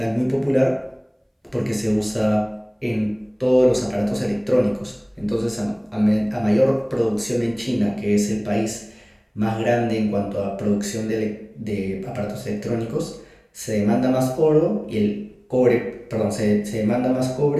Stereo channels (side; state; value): both; identical; correlation 1.00